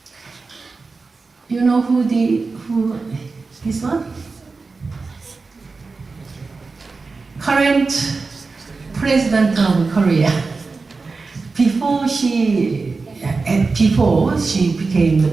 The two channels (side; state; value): left; quieter; 4.1 dB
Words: You know who this one? Current president of Korea. Before she became the